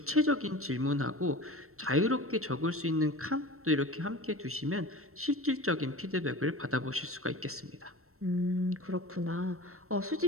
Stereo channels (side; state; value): left; late; 0.63 ms